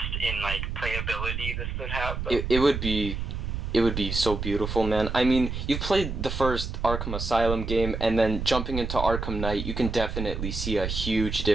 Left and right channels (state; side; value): noise; right; rumble, 4 dB below the sound